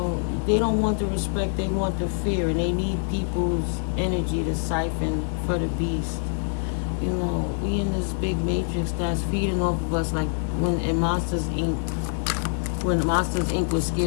don't want the respect, they want the fear, and they need people's energy to siphon for the beast. We in this big matrix that's feeding off of us, like when Monsters Inc. When Monsters Inc. was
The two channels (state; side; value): silent; right; digital silence